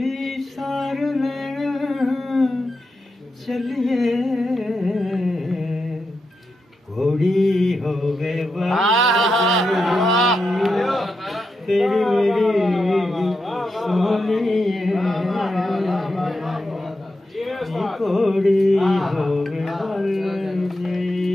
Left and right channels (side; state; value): both; normal; correlation 0.87